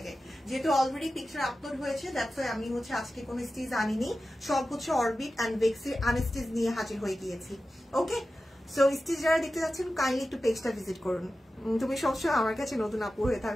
যেহেতু অলরেডি পিকচার আপলোড হয়েছে। দ্যাটস ওয়াই আমি হচ্ছে আজকে কোনো স্টিচ আনিনি, সব হচ্ছে অরবিট অ্যান্ড বেক্সির আনস্টিচ নিয়ে হাজির হয়ে গিয়েছি। ওকে, সো স্টিচ যারা দেখতে যাচ্ছেন কাইন্ডলি একটু পেজটা ভিজিট করুন। তুমি সবসময় আমার কাছে নতুন আপু হয়ে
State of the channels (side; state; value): both; normal; correlation 0.94